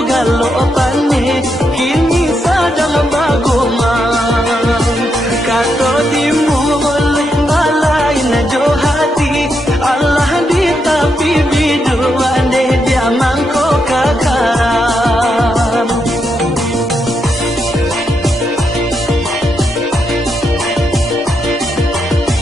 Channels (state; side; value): normal; both; correlation 0.81